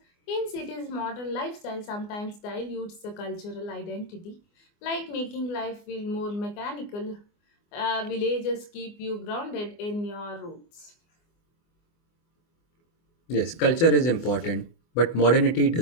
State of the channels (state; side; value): late; right; 24 ms